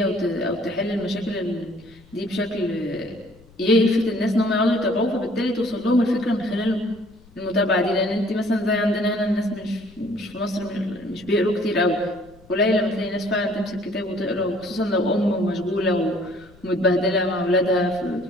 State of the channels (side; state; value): left; noise; rumble, 26 dB below the sound